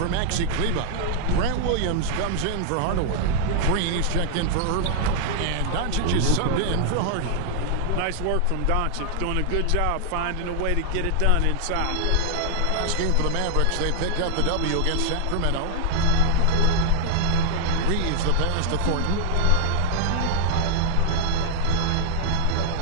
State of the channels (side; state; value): both; different; correlation -0.01